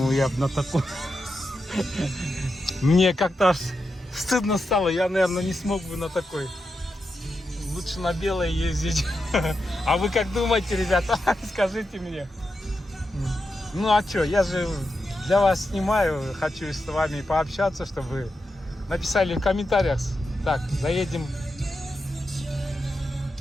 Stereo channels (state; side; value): normal; both; correlation 0.87